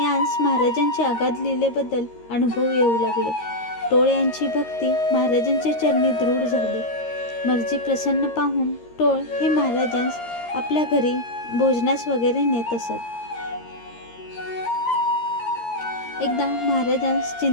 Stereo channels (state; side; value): late; right; 13 ms